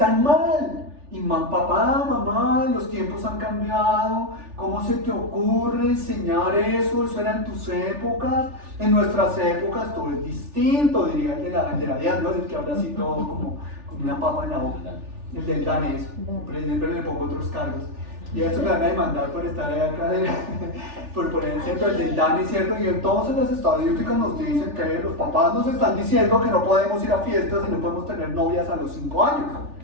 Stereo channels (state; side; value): late; left; 3.4 ms